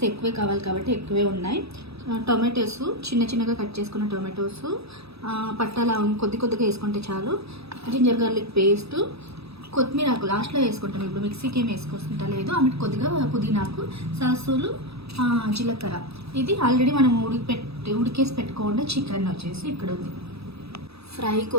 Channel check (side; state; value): left; late; 0.78 ms